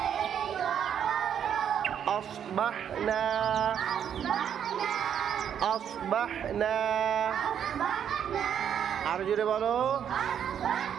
আসবাহনা আসবাহনা। আর জোরে বলো,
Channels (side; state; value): left; quieter; 8.8 dB